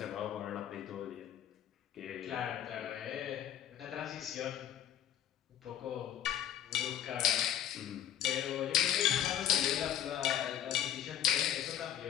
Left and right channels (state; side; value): quieter; right; 10.9 dB